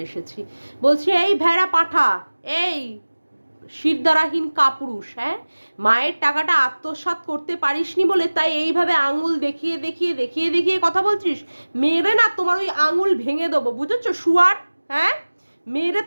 এসেছি। বলছি, এই ভেড়া পাঠা, এই শিরদারাহীন কাপুরুষ, হ্যাঁ, মায়ের টাকাটা আত্মসাৎ করতে পারিসনি বলে তাই এইভাবে আঙুল দেখিয়ে দেখিয়ে দেখিয়ে দেখিয়ে কথা বলছিস। মেরে না তোমার ওই আঙুল ভেঙে দেবো, বুঝেছো শুয়ার? হ্যাঁ, মেরে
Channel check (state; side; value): inverted; both; correlation -1.00